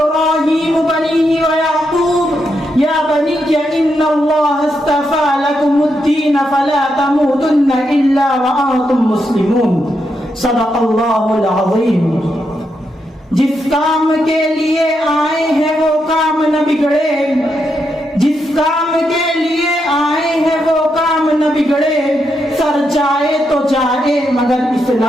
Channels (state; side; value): normal; both; correlation 0.82